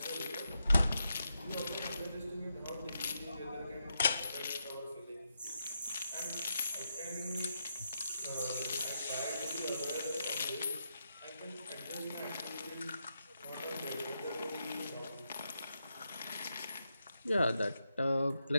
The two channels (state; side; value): inverted; both; correlation -0.84